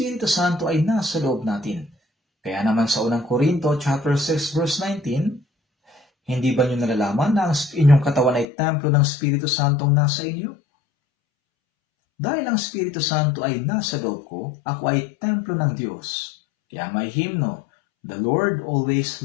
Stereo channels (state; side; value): drops out; right; at 8.5 s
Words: Santo ay nasa loob natin. Kaya naman sa unang Korinto, chapter 6, verse 19, hindi ba niyo nalalaman na ang inyong katawan ay templo ng Espiritu Santong nasa inyo? Dahil ang Espiritu Santo ay nasa loob ko, ako ay templo ng Diyos. Kaya may hymno, The Lord always